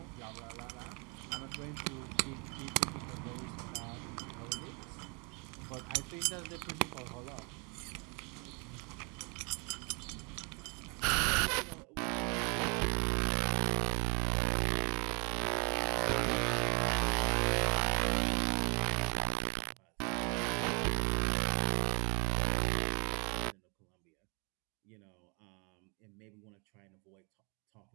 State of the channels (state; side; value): quieter; left; 32.9 dB